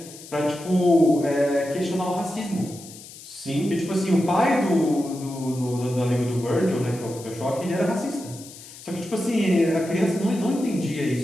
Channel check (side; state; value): left; noise; hiss, 17 dB below the sound